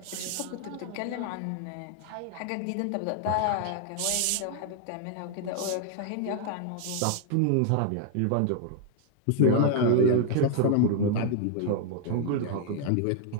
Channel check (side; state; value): both; different; correlation 0.00